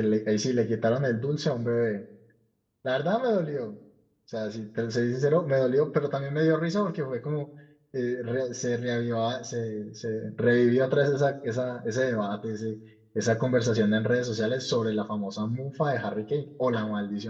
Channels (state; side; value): identical; both; correlation 1.00